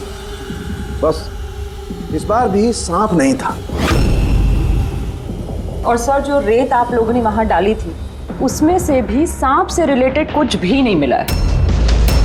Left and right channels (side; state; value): both; identical; correlation 1.00